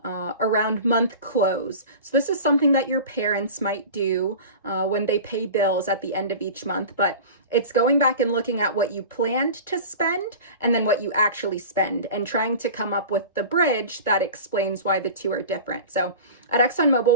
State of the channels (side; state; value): both; inverted; correlation -0.35